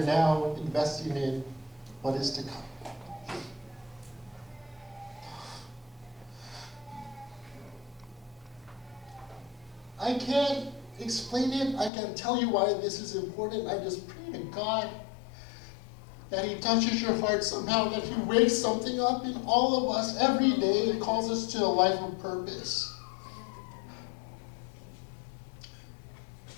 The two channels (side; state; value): right; drops out; at 11.9 s